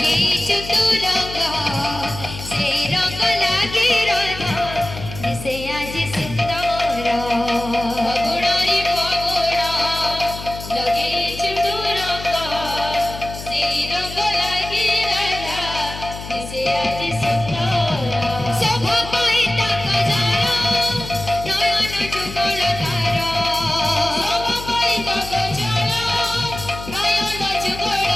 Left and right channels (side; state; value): left; noise; hum, 11 dB below the sound